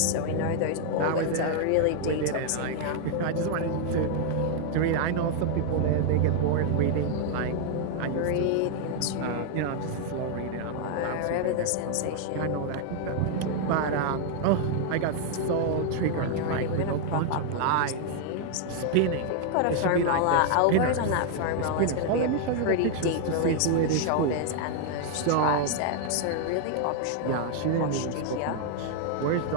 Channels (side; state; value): both; different; correlation 0.00